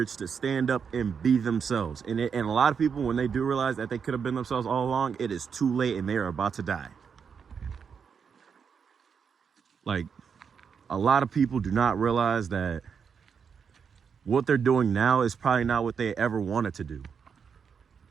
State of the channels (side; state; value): left; quieter; 6.5 dB